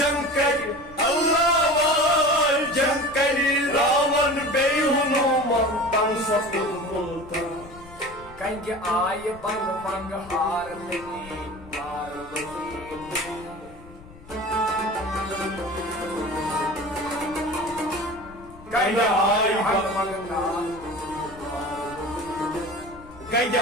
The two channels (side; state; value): left; noise; rumble, 20 dB below the sound